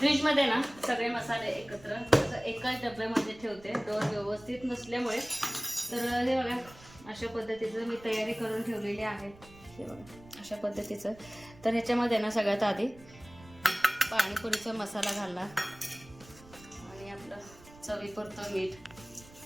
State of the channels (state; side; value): noise; right; rumble, 22 dB below the sound